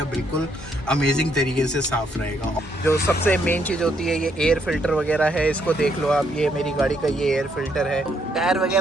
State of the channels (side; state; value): both; normal; correlation 0.73